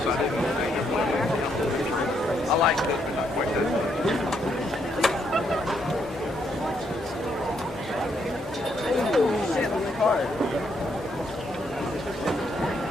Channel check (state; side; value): normal; both; correlation 0.75